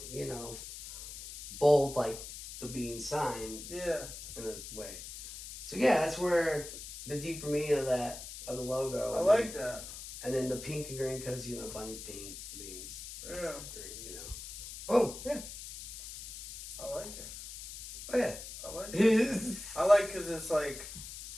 bold like the bean sign. Yeah. In this way. So yeah, that's where the deeper meaning of the logo. I like that. And then the pink and green, because bunny's pink, beans. Yeah. Green, Boom. Yeah. I like it. Oh yeah. I like it. I like because it's like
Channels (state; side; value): noise; left; hiss, 10 dB below the sound